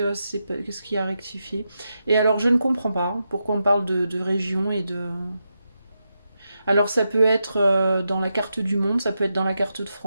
y a à rectifier? Et alors je ne comprends pas pourquoi on parle de région et de. Alors ça peut être dans la carte du monde, ça peut être dans la carte de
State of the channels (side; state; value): both; inverted; correlation -0.86